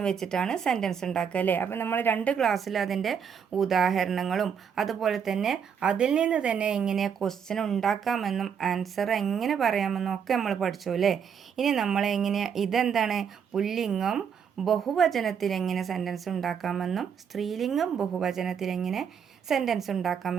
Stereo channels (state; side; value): quieter; left; 7.4 dB